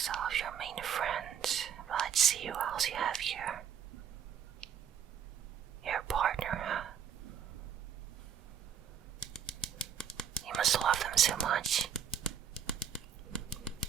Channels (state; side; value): quieter; left; 8.2 dB